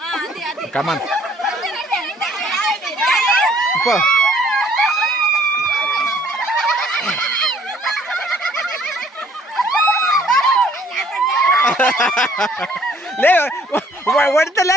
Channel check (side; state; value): both; normal; correlation 0.60